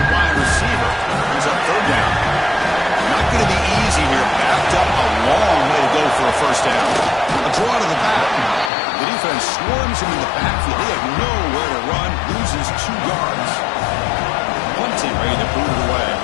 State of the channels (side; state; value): right; drops out; at 8.7 s